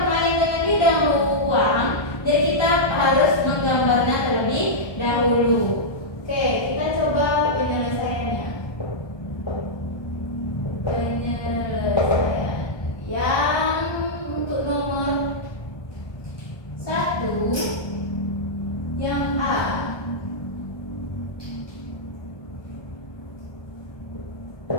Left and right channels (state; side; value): late; right; 1.2 ms